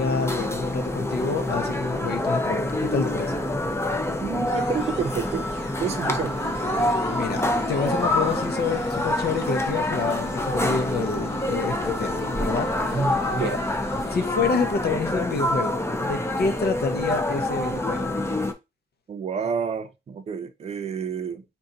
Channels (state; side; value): normal; both; correlation 0.58